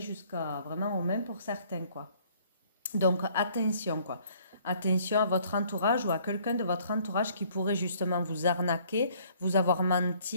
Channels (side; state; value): both; inverted; correlation -0.60